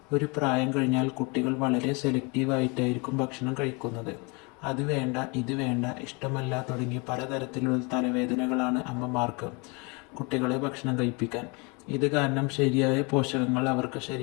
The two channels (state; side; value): quieter; right; 29.9 dB